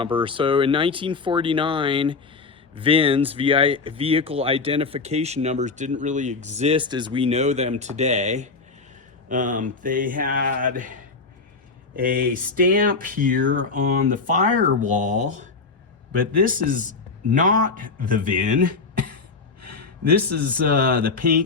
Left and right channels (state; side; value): quieter; right; 4.3 dB